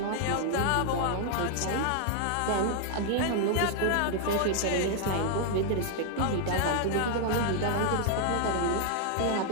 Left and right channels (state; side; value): different; both; correlation 0.00